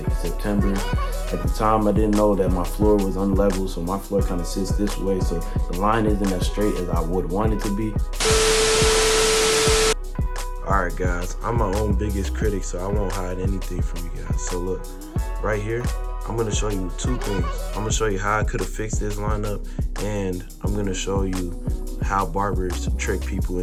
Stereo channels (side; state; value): both; identical; correlation 1.00